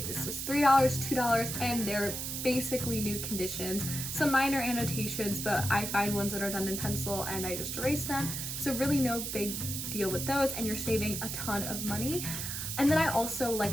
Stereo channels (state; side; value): noise; right; hiss, 4 dB below the sound